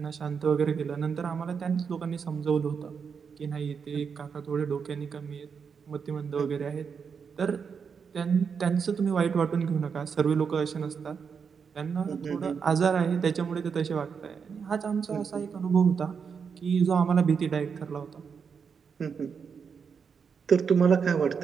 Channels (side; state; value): left; quieter; 6.2 dB